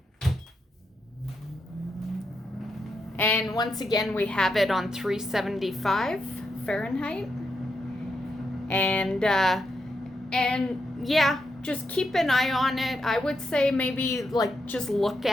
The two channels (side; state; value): both; normal; correlation 0.83